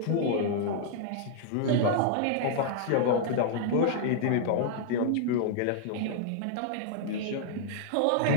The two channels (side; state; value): both; different; correlation -0.01